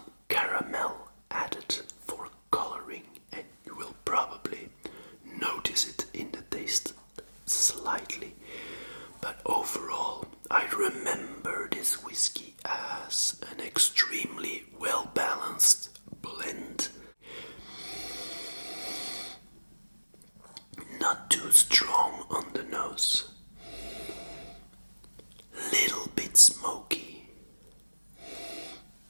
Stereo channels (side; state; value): both; inverted; correlation -1.00